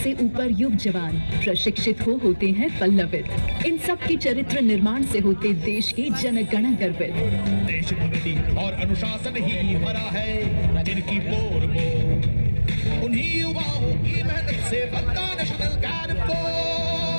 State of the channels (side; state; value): both; inverted; correlation -1.00